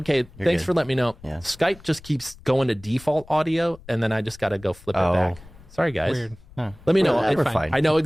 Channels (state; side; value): noise; left; rumble, 21 dB below the sound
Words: thanks for letting me know. Yeah. Skype just keeps going to default audio, and then I just got to go flip it back. Sorry, guys. Weird. Huh. Let me know. We're fine. I know